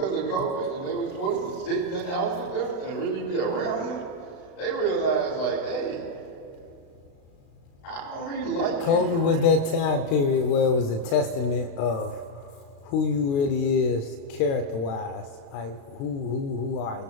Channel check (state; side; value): late; right; 36 ms